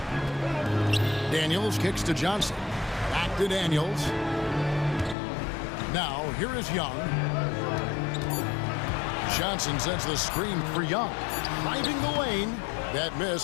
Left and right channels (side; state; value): right; drops out; at 5.2 s